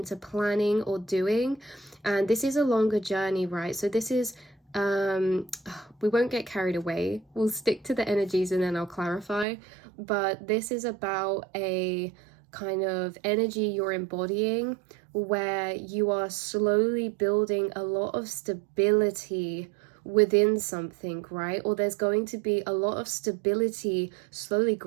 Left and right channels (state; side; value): drops out; left; at 9.5 s